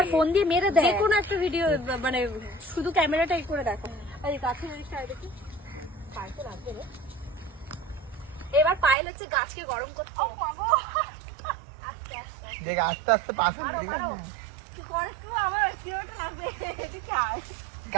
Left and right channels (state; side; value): drops out; left; at 9.0 s